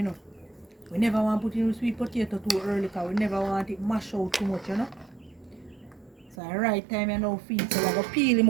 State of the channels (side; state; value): left; drops out; at 6.4 s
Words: know. We never want to put in sweet potato too early because we never want it mash out too much, you know. So the right time you now feed. So we're going to peel